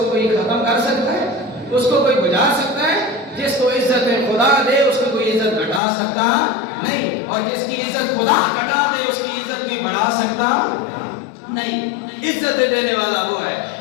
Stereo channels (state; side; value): drops out; right; at 5.8 s